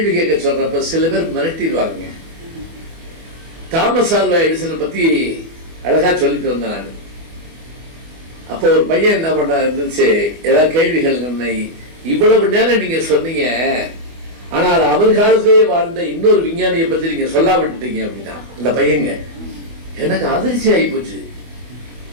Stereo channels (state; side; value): late; left; 24 ms